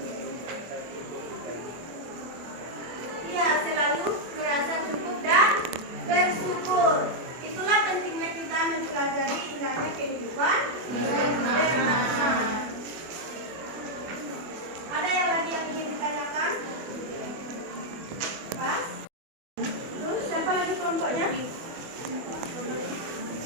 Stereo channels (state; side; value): late; left; 24 ms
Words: Ya, selalu merasa cukup dan bersyukur. Itulah pentingnya kita mempelajari indahnya kehidupan bermakna. Ada yang lagi yang ingin ditanyakan? Pas? Terus siapa lagi kelompoknya?